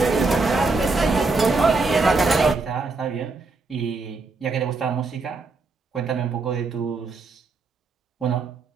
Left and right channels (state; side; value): quieter; left; 3.9 dB